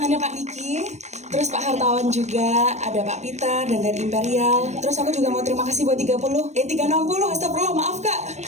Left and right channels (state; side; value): late; left; 0.33 ms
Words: Pak Niki. Terus Pak Hartawan juga, ada Pak Peter dan dari Imperial. Terus aku juga mau terima kasih buat 360, astagfirullah, maaf Kak.